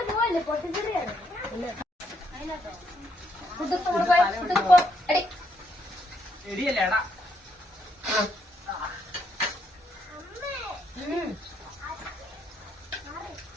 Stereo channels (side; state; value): both; normal; correlation 0.74